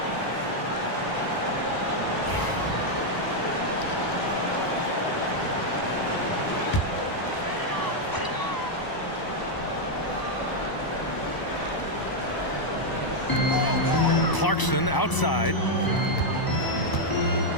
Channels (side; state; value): right; late; 1.0 ms